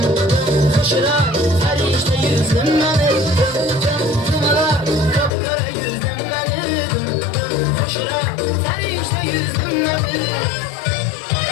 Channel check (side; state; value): right; drops out; at 5.3 s